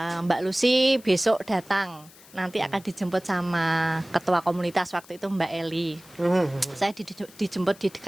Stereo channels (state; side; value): noise; left; hiss, 23 dB below the sound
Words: Mbak Lucy besok datang. Nanti akan dijemput sama ketua komunitas waktu itu Mbak Eli. Saya dijemput di